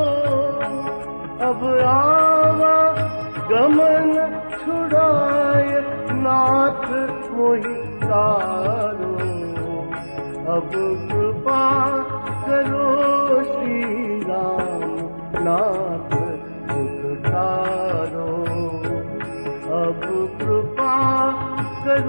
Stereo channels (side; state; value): both; inverted; correlation -1.00